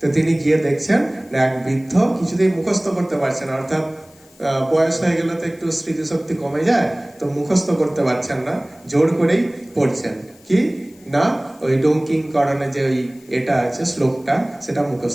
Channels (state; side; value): noise; left; hiss, 28 dB below the sound